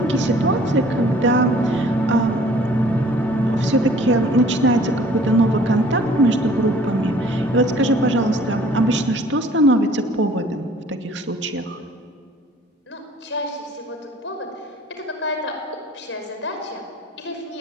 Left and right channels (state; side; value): normal; both; correlation 0.53